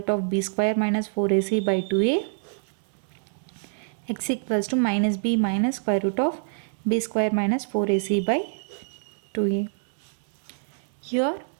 of b square minus 4ac by 2a. X equals to minus b minus square root of b square minus 4ac by 2a. Here,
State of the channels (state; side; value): silent; left; digital silence